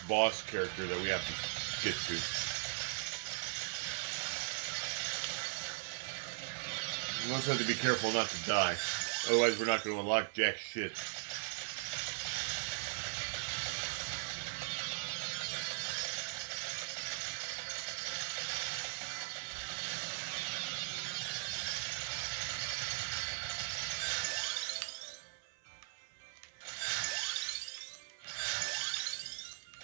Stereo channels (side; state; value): left; silent; 52 dB below the other